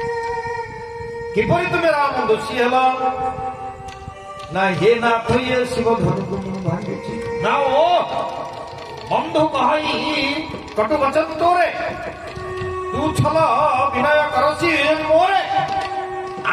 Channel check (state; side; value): identical; both; correlation 1.00